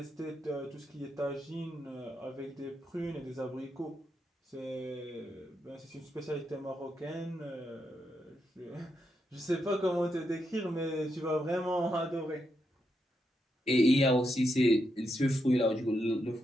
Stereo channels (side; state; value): both; normal; correlation 0.82